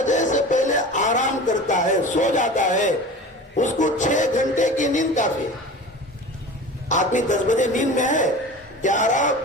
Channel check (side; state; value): both; normal; correlation 0.35